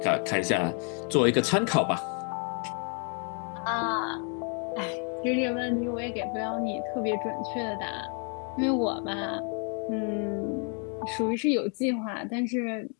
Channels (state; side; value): quieter; right; 39.9 dB